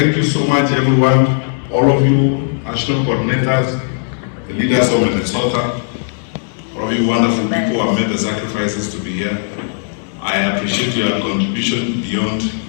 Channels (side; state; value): right; silent; digital silence